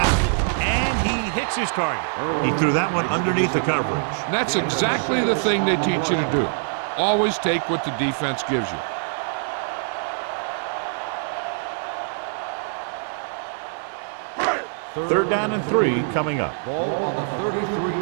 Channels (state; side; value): silent; left; 63 dB below the other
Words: and he hits his target. He threw that one underneath the coverage. And that's exactly the thing they teach you to do. Always take what the defense gives you. Third down and 3 coming up. Ball on the